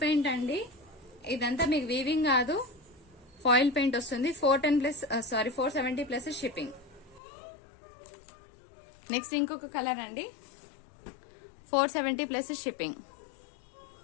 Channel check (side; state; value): right; drops out; at 7.2 s